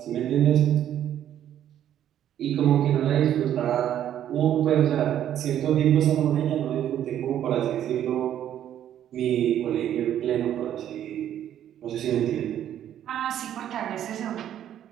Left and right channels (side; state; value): left; quieter; 10.8 dB